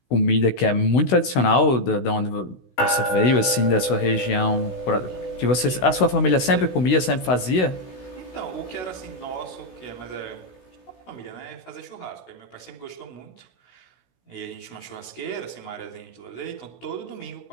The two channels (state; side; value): late; right; 16 ms